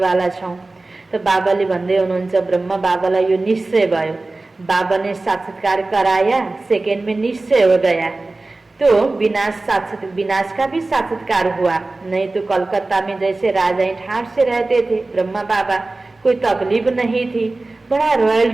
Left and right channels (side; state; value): left; quieter; 3.2 dB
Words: छौँ। त बाबाले भन्दै हुनुहुन्छ, ब्रह्मा बाबालाई यो निश्चय भयो, बाबा ने साक्षात्कार कराया, सेकेंड में निश्चय हो गया। तो विनाश का भी साक्षात्कार हुआ, नहीं तो कलकत्ता में जैसे राजा ठाट से रहते थे ब्रह्मा बाबा, कोई तकलीफ नहीं थी, बड़ा